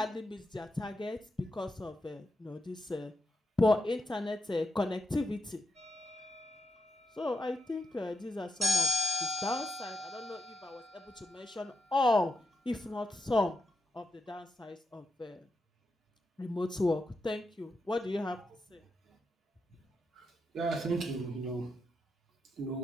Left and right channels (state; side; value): normal; both; correlation 0.84